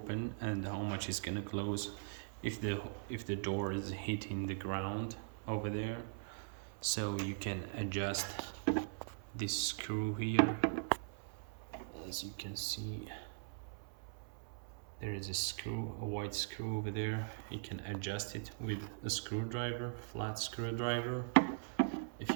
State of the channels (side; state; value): left; silent; 51 dB below the other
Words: and how much is gonna close, if the door is hitting the ground over there, so you can adjust this screw here. As you can see, there is a screw, a white screw over there. You can adjust it with a screwdriver, flat screwdriver. If